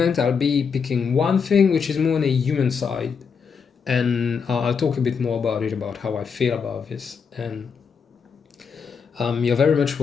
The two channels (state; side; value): quieter; right; 6.1 dB